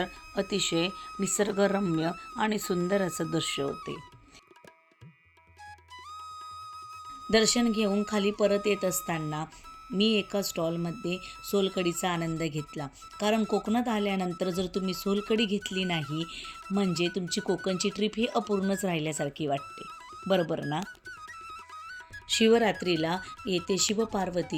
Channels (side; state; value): both; identical; correlation 1.00